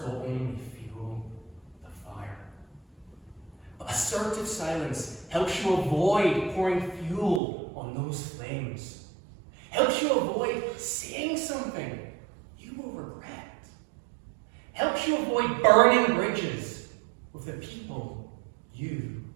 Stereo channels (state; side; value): drops out; left; at 7.4 s